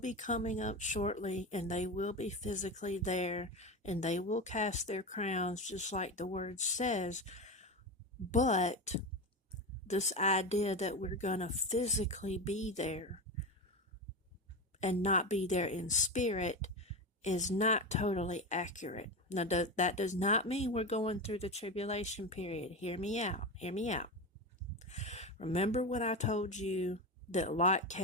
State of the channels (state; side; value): normal; both; correlation 0.20